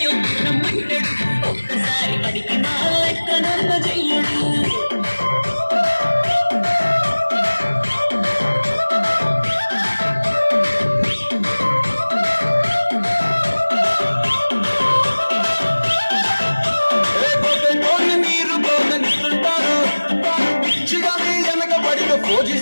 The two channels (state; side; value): inverted; both; correlation -1.00